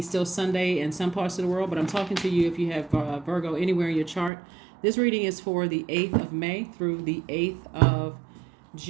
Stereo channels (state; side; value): drops out; left; at 4.3 s